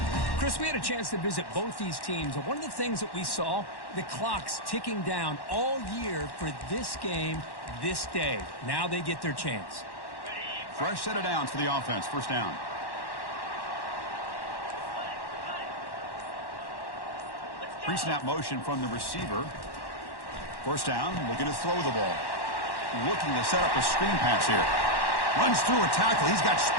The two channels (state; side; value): late; right; 1.1 ms